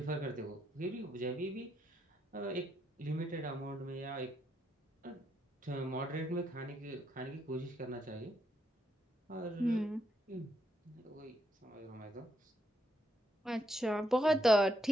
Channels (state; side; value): normal; both; correlation 0.78